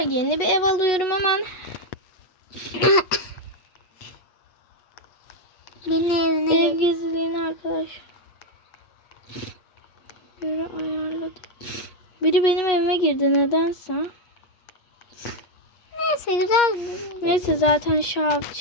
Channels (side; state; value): right; late; 8.4 ms